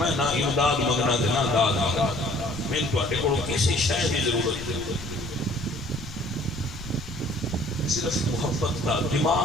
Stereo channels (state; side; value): noise; left; rumble, 15 dB below the sound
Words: نہ امداد مگنا دے نہ داد مگنا میں تو اٹھے کو کسی شے دی ضرورت ہے صرف محبت کا